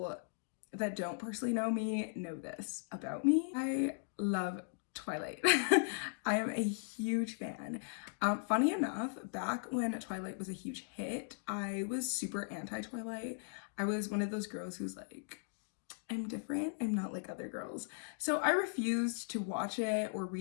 that don't personally know me know this about me. I love Twilight. I am a huge fan. Funny enough, back when Twilight was a huge hit, I was super anti-Twilight. I was one of those girls who's like, I'm different, I'm not like other girls. So I refused to watch it or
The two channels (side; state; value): right; silent; digital silence